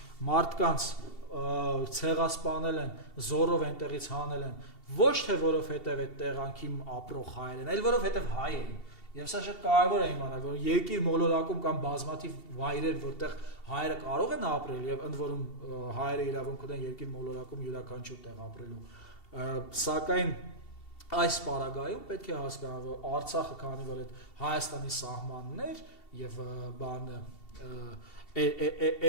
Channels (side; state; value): right; late; 2.7 ms